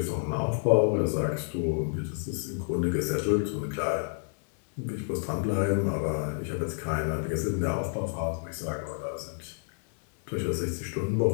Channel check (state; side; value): silent; right; digital silence